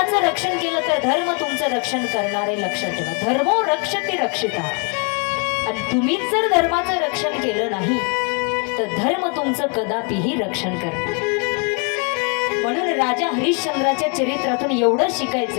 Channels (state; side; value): quieter; right; 35.2 dB